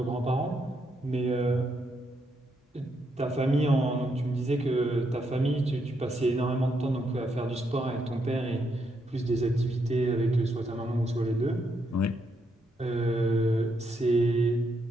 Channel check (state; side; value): normal; both; correlation 0.78